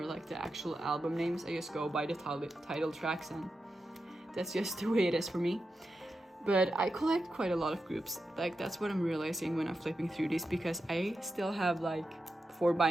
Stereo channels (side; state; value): both; normal; correlation 0.89